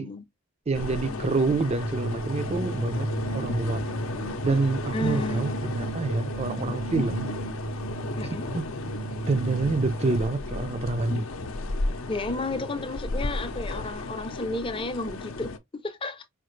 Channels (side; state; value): both; normal; correlation 0.63